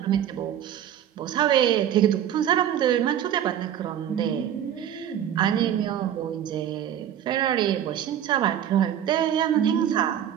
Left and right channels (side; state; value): left; quieter; 10.2 dB